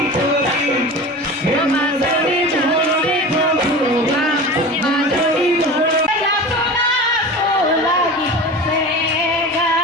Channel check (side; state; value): both; normal; correlation 0.32